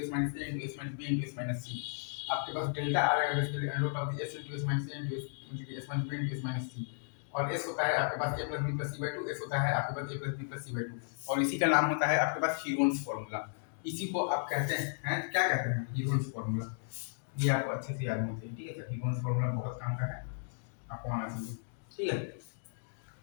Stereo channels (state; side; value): silent; right; digital silence